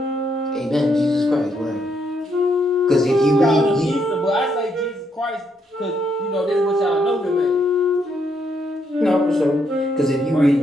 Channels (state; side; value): normal; both; correlation 0.76